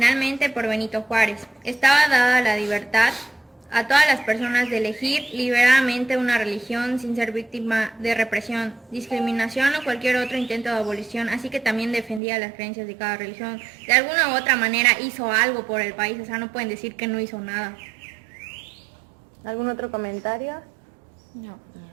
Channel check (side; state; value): left; drops out; at 12.2 s